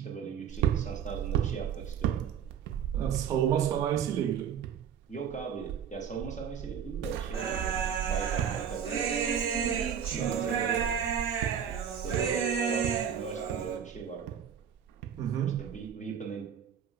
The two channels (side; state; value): left; quieter; 8.2 dB